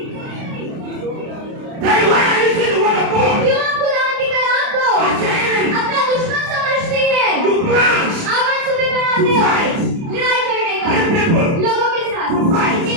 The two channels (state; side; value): late; left; 30 ms